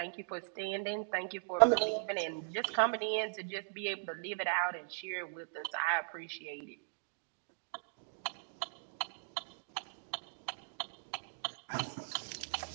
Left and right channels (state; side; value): silent; left; digital silence